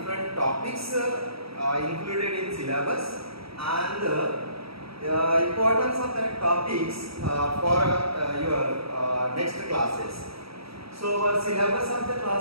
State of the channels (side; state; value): left; late; 0.76 ms